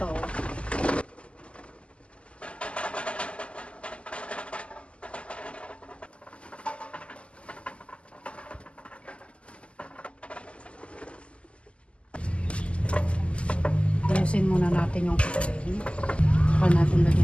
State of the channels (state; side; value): late; right; 0.056 ms